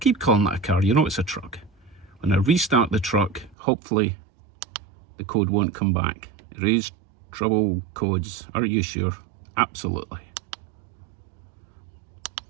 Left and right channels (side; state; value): left; drops out; at 3.6 s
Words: calling that a car, you know it's a truck. When I restart the truck, hopefully the code won't come back. Erase trouble codes. Are you sure? Absolutely.